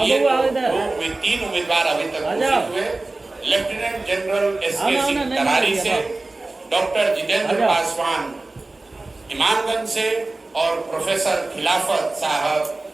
3 उम्मीदवार अभी तक घोषित हुए। Lieutenant general S K Singh Tarari से, डॉक्टर जितेंद्र पासवान इमामगंज से, और प्रोफेसर खिलाफत साहब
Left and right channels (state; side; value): quieter; left; 3.1 dB